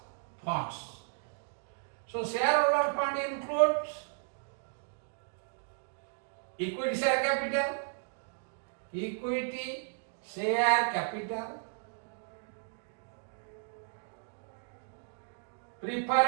funds. So shareholder fund includes equity share capital, equity share capital,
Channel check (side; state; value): left; silent; digital silence